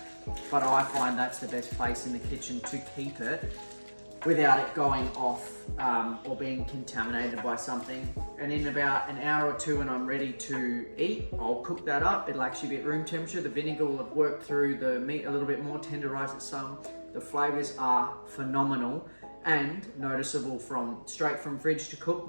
but I find that's the best place in the kitchen to keep it without it going off or being contaminated by something. And in about an hour or two when I'm ready to eat, I'll cook that up. It'll actually be at room temperature. The vinegar will have worked through the meat a little bit more, tenderized it some. The flavors are phenomenal and noticeable from straight from fridge to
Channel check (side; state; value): both; inverted; correlation -1.00